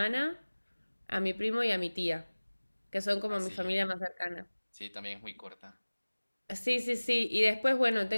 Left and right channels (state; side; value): inverted; both; correlation -1.00